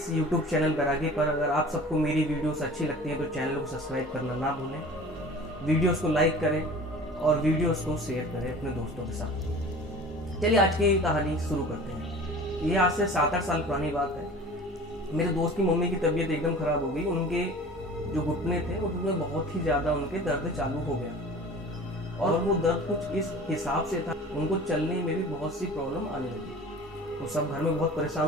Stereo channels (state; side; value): normal; both; correlation 0.41